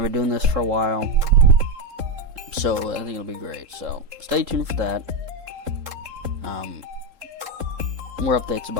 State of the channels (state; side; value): late; left; 3.7 ms